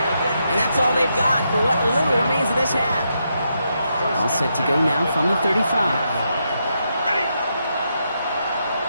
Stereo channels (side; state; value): both; inverted; correlation -0.81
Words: And that's all they've got for what little remains of this half. All set to go now from the 35. Ready.